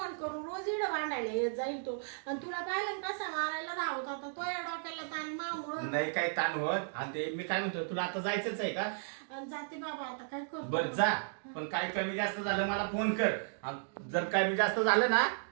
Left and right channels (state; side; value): silent; left; digital silence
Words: करून रोज इडं भांडायला येत जाईल तो. आणि तुला पाहिलं ना कसा मारायला धावत होता तो या डोक्याला ताण मामुळं. नाही काही ताण होत. आणि ते मी काय म्हणतो, तुला आता जायचंच आहे का? जाते बाबा आता काय करतो. बर जा, पण काय कमी जास्त झालं मला फोन कर. आणि जर कमी जास्त झालं ना